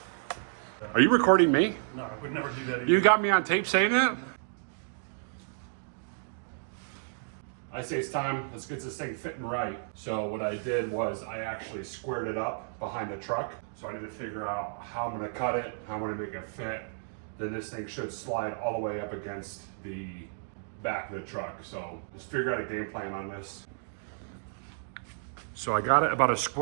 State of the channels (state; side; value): silent; left; digital silence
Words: Are you recording me? No, I would never do that either. You got me on tape saying that? I say it's time, let's get this thing fitting right. So what I did was I actually squared it up behind the truck. So I need to figure out how I'm gonna cut it, how I'm gonna make it fit. Then this thing should slide all the way up against the back of the truck. So just figure out a game plan on this. So I got it about as